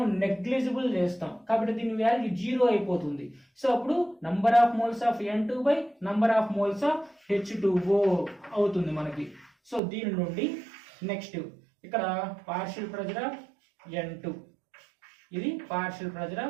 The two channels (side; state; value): left; drops out; at 9.8 s